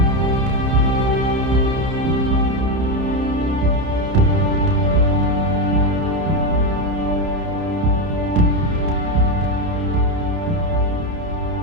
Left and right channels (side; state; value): left; late; 30 ms